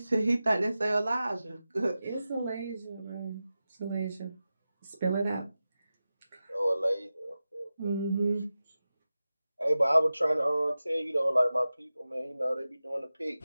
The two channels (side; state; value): both; inverted; correlation -0.94